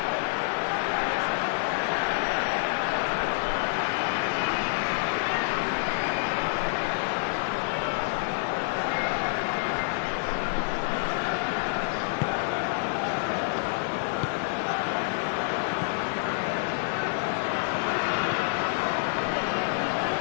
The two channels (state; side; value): silent; right; digital silence